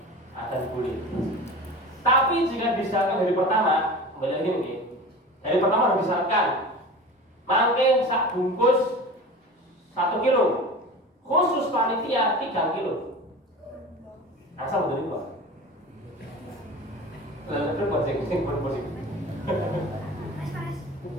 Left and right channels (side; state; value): both; normal; correlation 0.35